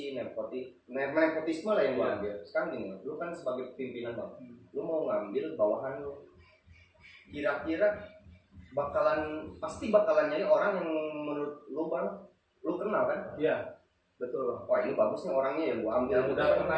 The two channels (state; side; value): identical; both; correlation 1.00